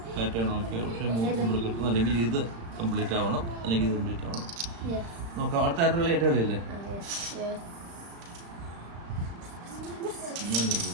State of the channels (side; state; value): left; late; 35 ms